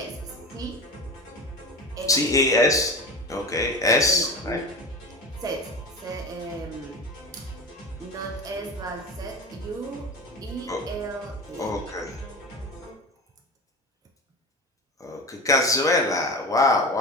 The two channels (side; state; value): both; normal; correlation 0.29